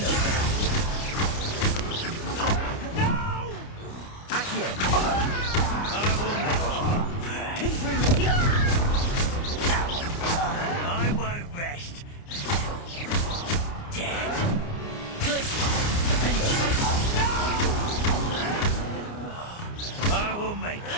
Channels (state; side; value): late; right; 29 ms